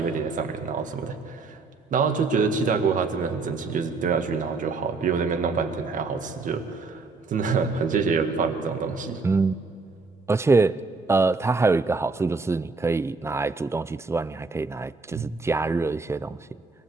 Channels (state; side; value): quieter; left; 4.1 dB